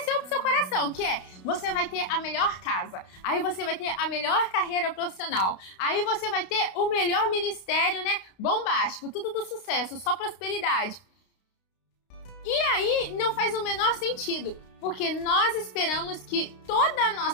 pro seu coração, que é, você vai ter a melhor casa, aí você vai ter a melhor carreira profissional, aí você vai ter o melhor ministério, bombástico, tudo do sucesso, só prosperidade. E aí não faz o menor sentido, porque nós esperamos que toda a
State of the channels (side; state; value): right; late; 31 ms